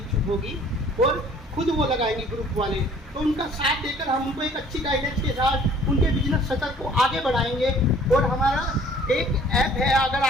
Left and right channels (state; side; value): normal; both; correlation 0.54